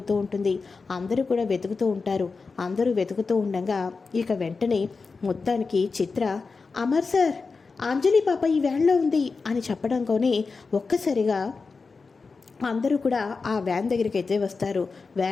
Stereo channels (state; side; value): quieter; right; 4.5 dB